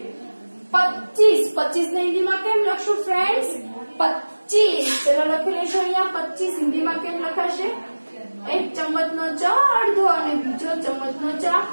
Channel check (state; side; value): inverted; both; correlation -1.00